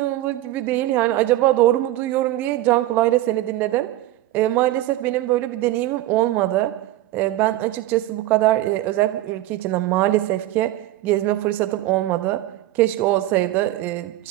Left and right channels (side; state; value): left; quieter; 15.3 dB